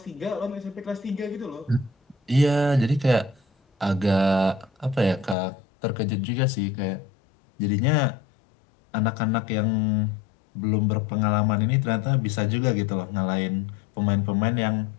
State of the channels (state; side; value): drops out; right; at 5.4 s